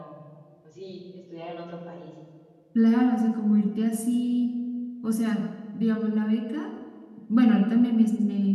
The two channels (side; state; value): both; identical; correlation 1.00